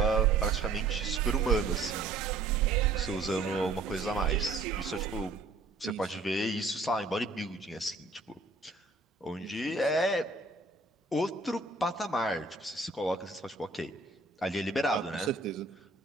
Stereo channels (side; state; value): left; quieter; 3.6 dB